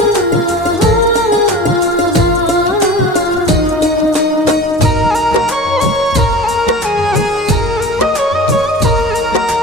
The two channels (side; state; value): both; normal; correlation 0.37